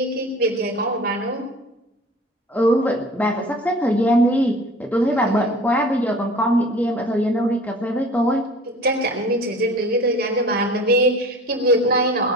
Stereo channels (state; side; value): normal; both; correlation 0.43